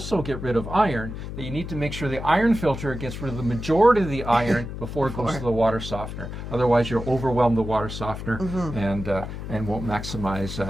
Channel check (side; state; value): left; noise; hum, 8 dB below the sound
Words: get rid of iron, that you need to make sure the iron filter gets rid of the majority of the iron before it goes to the water softener. Otherwise, you'll overwhelm the water softener and won't